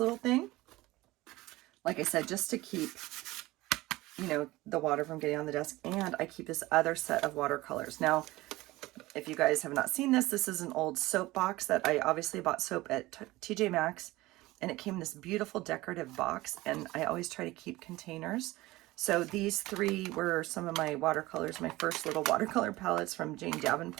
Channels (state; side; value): quieter; left; 19.0 dB